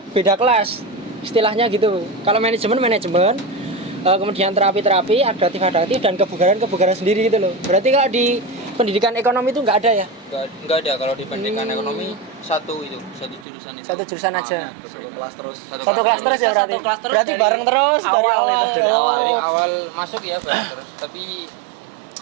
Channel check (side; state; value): left; drops out; at 13.5 s